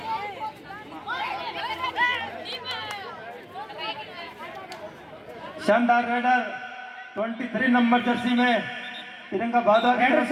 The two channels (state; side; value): identical; both; correlation 1.00